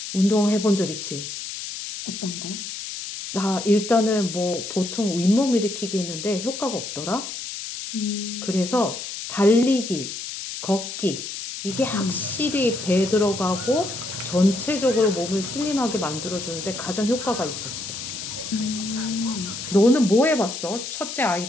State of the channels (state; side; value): noise; left; hiss, 8 dB below the sound